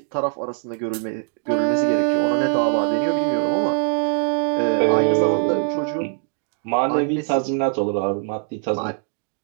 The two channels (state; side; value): silent; left; digital silence